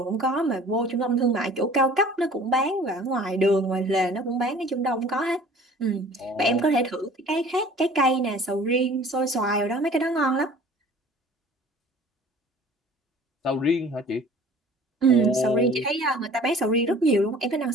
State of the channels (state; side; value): normal; both; correlation 0.48